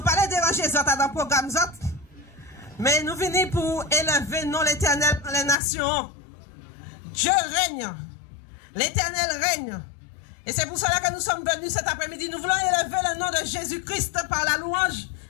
parlons déranger les autres dans le programme, mais nous venons pour élever non l'éternel dans les nations. Dieu règne. L'éternel règne. Et c'est pour cela que nous sommes venus cet après-midi. Nous voulons élever le nom de Jésus-Christ par la louange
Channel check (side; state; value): right; drops out; at 5.6 s